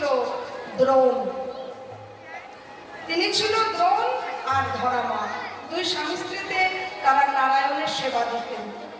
দ্রোণ। তিনি ছিল দ্রোণ আর ধরা মা, দুই স্বামী স্ত্রীতে তারা নারায়ণের সেবা দিতেন।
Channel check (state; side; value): identical; both; correlation 1.00